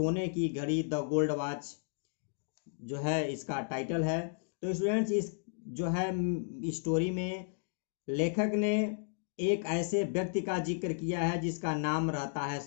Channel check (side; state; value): right; silent; digital silence